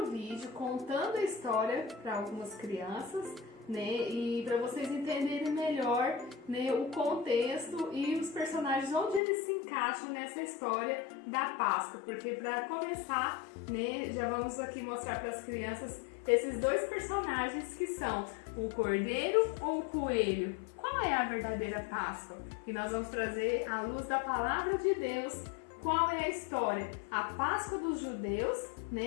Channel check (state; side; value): drops out; right; at 9.2 s